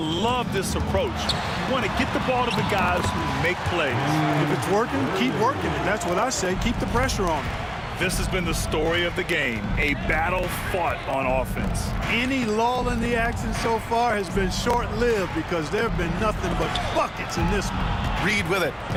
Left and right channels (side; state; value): both; identical; correlation 1.00